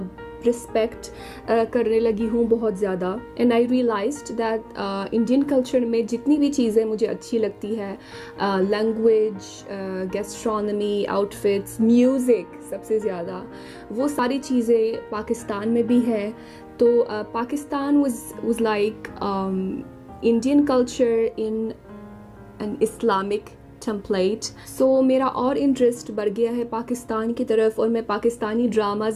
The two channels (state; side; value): identical; both; correlation 1.00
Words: رسپیکٹ کرنے لگی ہوں بہت زیادہ. And I realised that Indian culture میں جتنی بھی چیزیں مجھے اچھی لگتی ہے، language, gastronomy, outfits, music سب سے زیادہ، وہ ساری چیزیں پاکستان میں بھی ہے. تو Pakistan was like Indian culture in an Islamic template. So میرا اور انٹرسٹ بڑھ گیا ہے پاکستان کی طرف اور میں پاکستانی